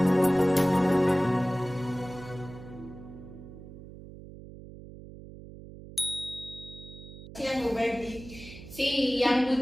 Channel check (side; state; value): right; noise; hum, 15 dB below the sound